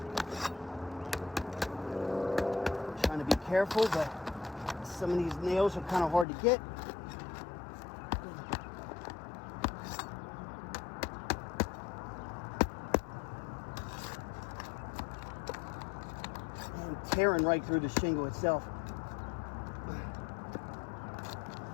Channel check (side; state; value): right; drops out; at 6.2 s